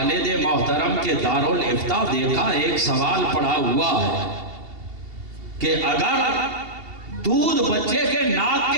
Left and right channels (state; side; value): late; left; 2.7 ms